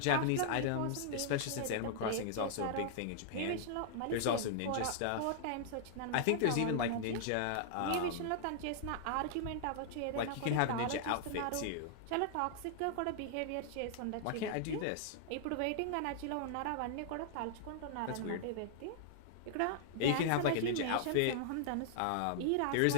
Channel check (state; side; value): different; both; correlation -0.01